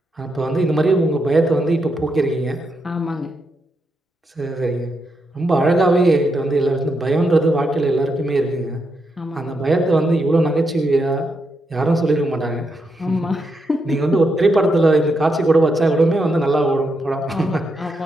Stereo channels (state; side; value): normal; both; correlation 0.82